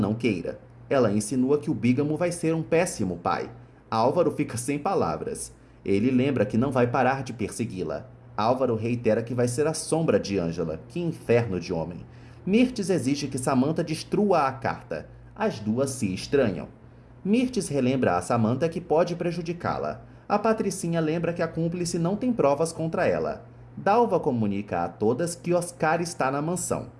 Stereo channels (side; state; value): both; identical; correlation 1.00